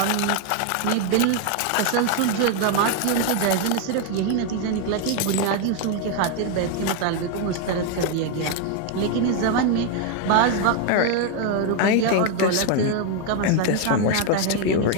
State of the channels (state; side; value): different; both; correlation 0.01